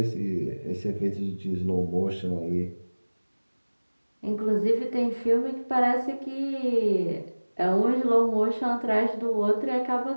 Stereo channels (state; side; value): inverted; both; correlation -1.00